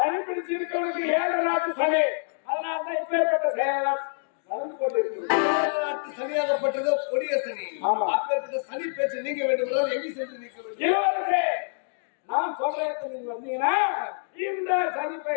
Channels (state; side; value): silent; right; digital silence